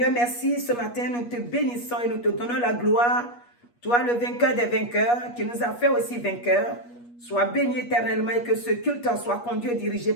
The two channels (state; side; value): late; right; 8.4 ms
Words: merci, ce matin nous te bénissons et nous te donnons la gloire. Toi, le vainqueur des vainqueurs, qui nous a fait aussi vainqueurs, sois béni éternellement et que ce culte soit conduit et dirigé